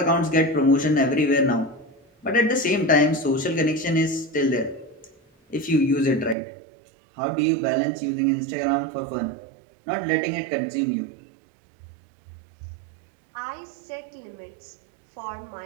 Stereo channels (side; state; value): left; drops out; at 6.4 s